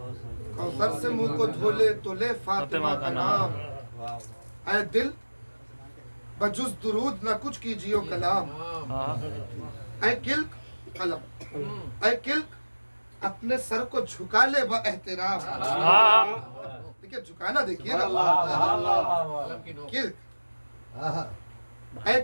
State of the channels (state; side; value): inverted; both; correlation -1.00